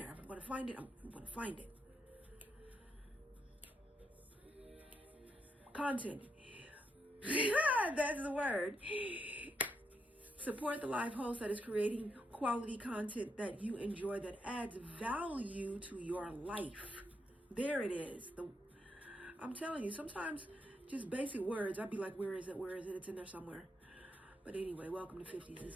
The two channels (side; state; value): both; normal; correlation 0.80